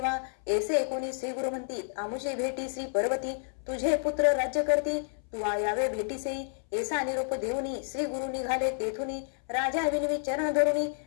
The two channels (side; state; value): right; silent; 58 dB below the other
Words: ऐसे कोणी श्री गुरु म्हणती आमुषे भेटी श्री पर्वती. तुझे पुत्र राज्य करती तू यावे भेटीसे. ऐसा निरोप देऊनी श्री गुरु निघाले तेथुनी. राजा विनवी चरण धरुनी